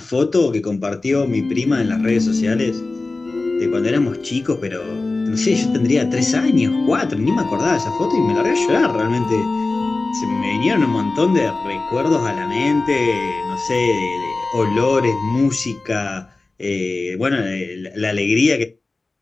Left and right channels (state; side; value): quieter; right; 3.4 dB